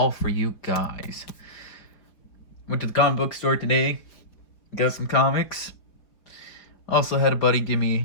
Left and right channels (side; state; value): right; late; 4.7 ms